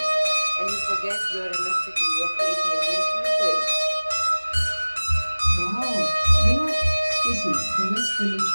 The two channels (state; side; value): inverted; both; correlation -1.00